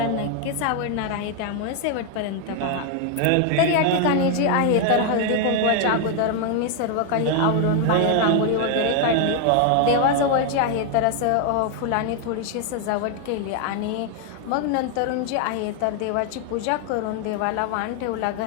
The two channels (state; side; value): different; both; correlation 0.00